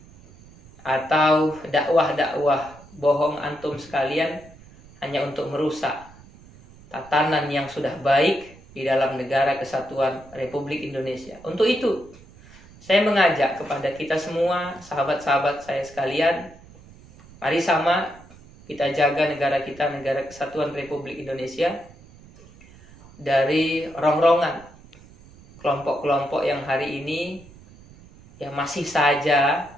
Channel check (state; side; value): noise; right; rumble, 23 dB below the sound